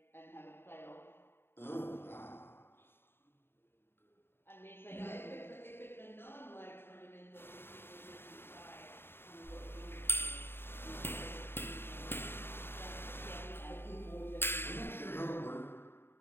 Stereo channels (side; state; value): right; late; 0.11 ms